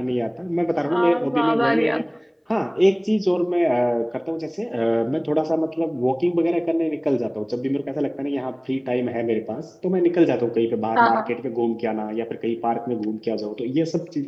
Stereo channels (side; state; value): both; identical; correlation 1.00